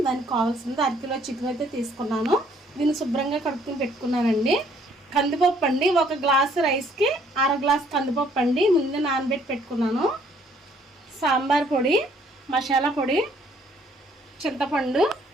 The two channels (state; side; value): normal; both; correlation 0.63